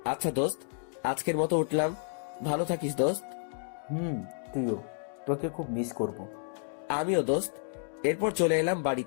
আচ্ছা দোস্ত, আজকের মতো উঠলাম। ভালো থাকিস দোস্ত। তুইও। তোকে খুব মিস করব। আমিও দোস্ত। এরপর চলে এলাম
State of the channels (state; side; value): silent; right; digital silence